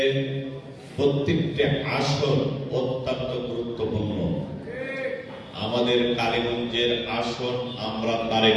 প্রত্যেকটি আসন অত্যন্ত গুরুত্বপূর্ণ। আমাদের কালীগঞ্জের আসন আমরা তারেক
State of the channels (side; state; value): both; identical; correlation 1.00